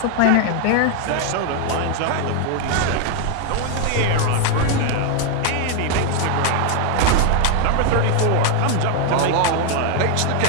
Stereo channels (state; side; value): different; both; correlation 0.00